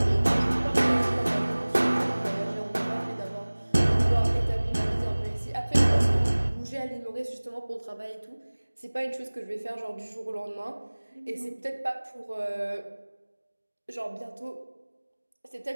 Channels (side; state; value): both; inverted; correlation -1.00